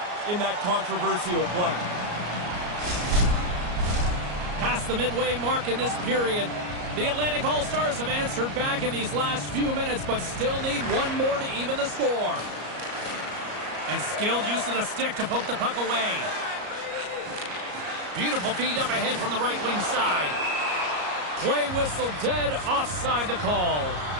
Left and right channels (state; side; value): late; left; 34 ms